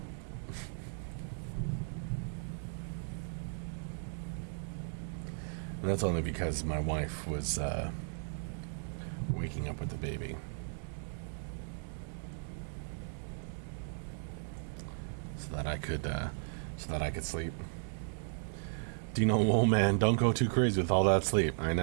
And that's only because my wife was waking up with the baby. So that I could sleep. Dino, oh man, don't go too crazy with all that sleep. I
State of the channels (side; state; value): left; silent; digital silence